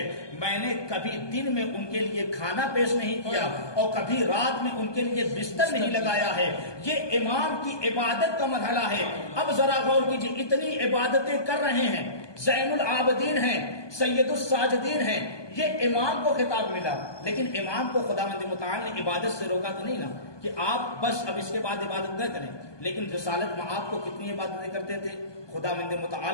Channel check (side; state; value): right; late; 1.2 ms